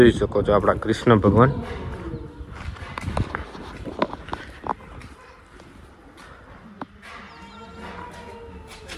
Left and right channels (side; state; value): both; identical; correlation 1.00